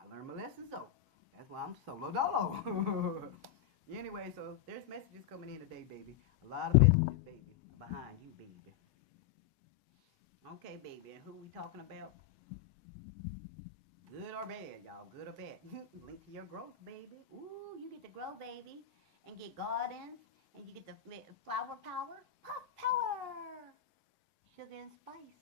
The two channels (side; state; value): right; quieter; 10.6 dB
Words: learned my lessons, though. That's why I'm solo dolo. Anyway, so there's messages coming in today, baby. A lot of messages, baby. Behind you, baby. Okay, baby, and who we talking about? Good or bad, y'all? Good or bad? Link to your growth, baby. Ooh, you get to grow, baby. And get gardens. And you get the flower power. Puff power! Sugar and